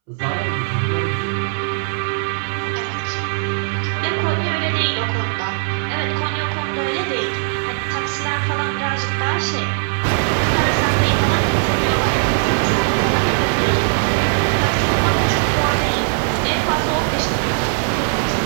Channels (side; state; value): left; silent; 66 dB below the other